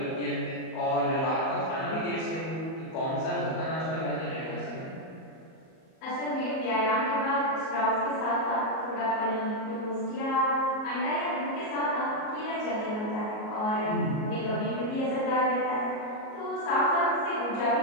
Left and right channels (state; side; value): late; right; 38 ms